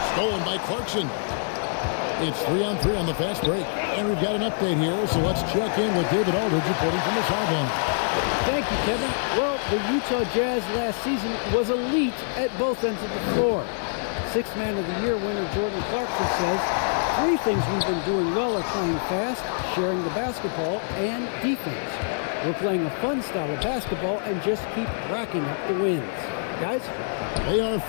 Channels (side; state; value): right; silent; digital silence